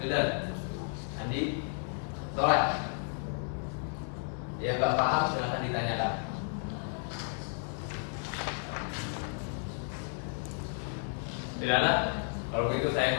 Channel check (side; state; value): right; silent; 56 dB below the other